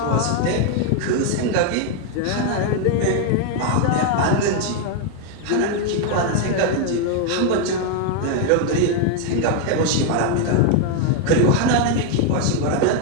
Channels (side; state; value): both; different; correlation 0.01